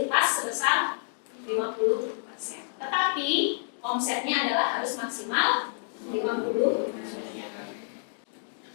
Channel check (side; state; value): right; silent; digital silence